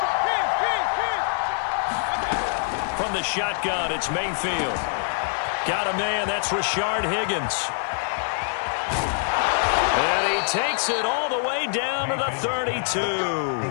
From the shotgun, it's Mayfield. Got a man, that's Rashard Higgins. And he takes it all the way down to the 32.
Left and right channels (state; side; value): silent; right; digital silence